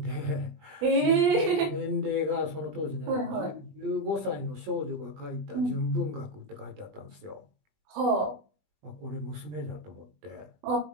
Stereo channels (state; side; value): late; left; 20 ms